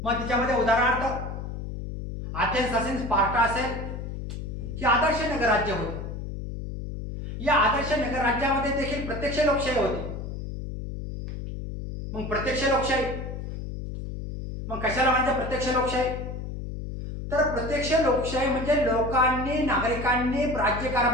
मग त्याच्यामध्ये उदाहरणार्थ अथेन्स असेल, स्पार्टा असेल, ही आदर्श नगरराज्य होती. या आदर्श नगरराज्यामध्ये देखील प्रत्यक्ष लोकशाही होती. मग प्रत्यक्ष लोकशाही, मग कशाला म्हणजे प्रत्यक्ष लोकशाही? तर प्रत्यक्ष लोकशाही म्हणजे लोकांनी, नागरिकांनी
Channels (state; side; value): noise; left; hum, 7 dB below the sound